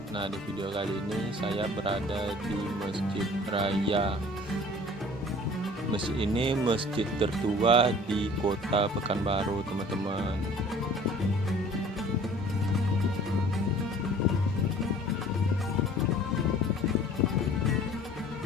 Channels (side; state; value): both; normal; correlation 0.49